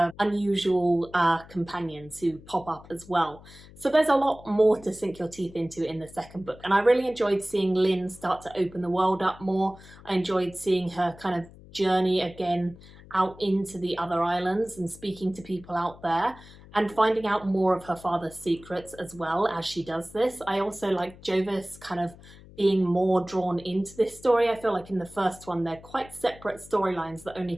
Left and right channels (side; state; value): left; noise; hum, 20 dB below the sound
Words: unusual companions who pop up as well. So there's a lot more to sink your teeth into in the second book. And I really enjoyed seeing Lynn start to open the world up more. I enjoyed seeing her kind of journey again out into the other islands and speaking to people out there. and finding out more of her father's secrets as well as she does this. I also like Jovis kind of being more drawn into this story. I feel like in the first one they're quite separate storylines that only